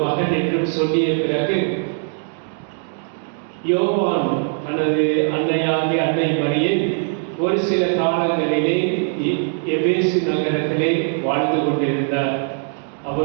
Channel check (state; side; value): silent; left; 65 dB below the other